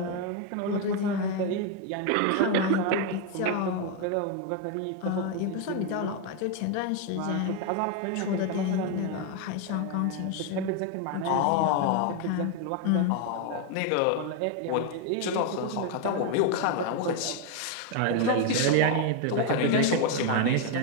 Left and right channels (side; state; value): both; different; correlation 0.01